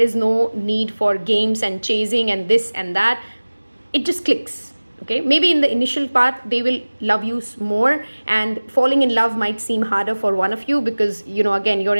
no need for games and chasing and this and that. It just clicks. Okay, maybe in the initial part, they will love you more, and falling in love might seem harder for one of you because, again, you're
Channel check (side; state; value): both; inverted; correlation -1.00